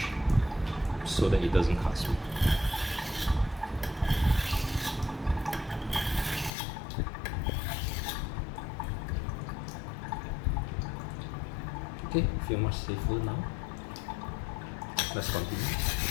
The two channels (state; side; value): drops out; right; at 6.5 s